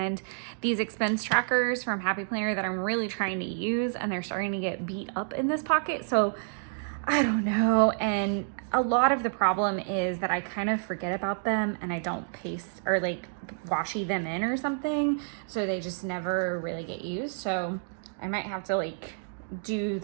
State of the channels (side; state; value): left; silent; digital silence